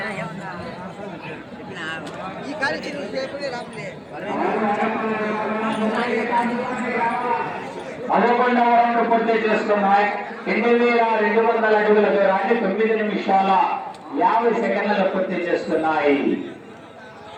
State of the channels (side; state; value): both; identical; correlation 1.00